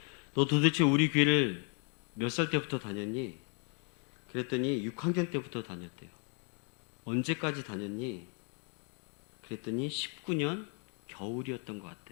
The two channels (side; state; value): right; quieter; 38.6 dB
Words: 너 도대체 우리 교회를 몇 살 때부터 다녔니? 그랬더니 6학년 때부터 다녔대요. 언제까지 다녔니? 그랬더니 19년 겨울이었던 것